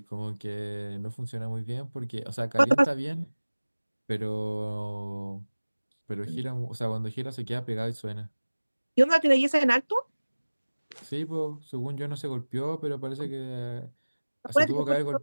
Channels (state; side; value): inverted; both; correlation -1.00